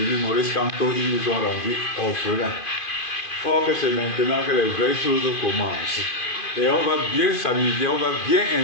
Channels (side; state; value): right; late; 2.5 ms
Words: Maurice Kamto, ils nous ont rendus orphelins. Or que c'est maintenant que les vraies choses commencent. Et on va bien s'amuser, on va bien